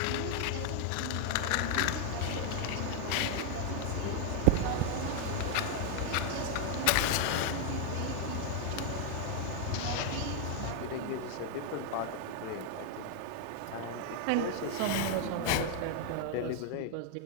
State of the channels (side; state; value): both; different; correlation 0.00